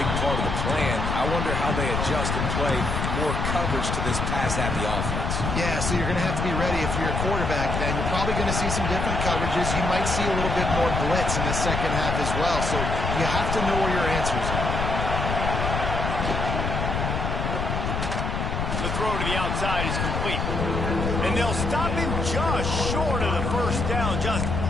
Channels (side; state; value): left; noise; rumble, 1 dB below the sound